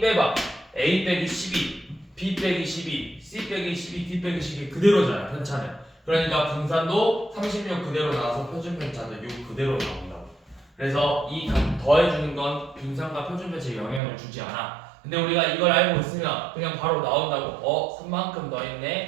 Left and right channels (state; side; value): drops out; left; at 14.0 s